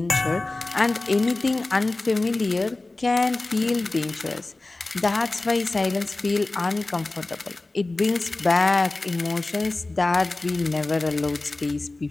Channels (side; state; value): right; quieter; 3.1 dB